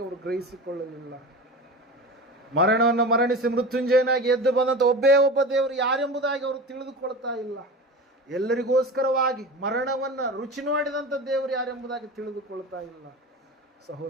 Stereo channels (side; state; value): both; normal; correlation 0.30